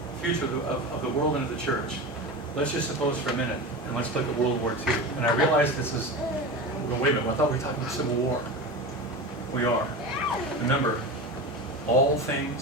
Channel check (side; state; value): both; normal; correlation 0.26